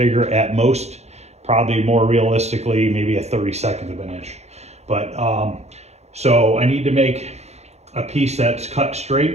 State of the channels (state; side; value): late; left; 0.32 ms